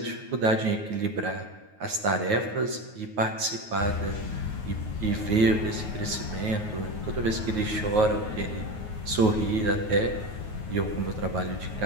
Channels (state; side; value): late; left; 9.4 ms